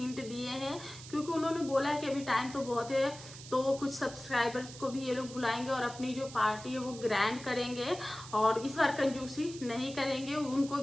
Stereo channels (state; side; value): noise; right; hiss, 15 dB below the sound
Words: दिए हैं, क्योंकि उन्होंने बोला कि अभी टाइम तो बहुत है, तो कुछ सब्सक्राइबर्स को भी ये लोग बुलाएंगे और अपनी जो पार्टी है वो ग्रैंड करेंगे और इस बार कंजूसी नहीं करेंगे। उनको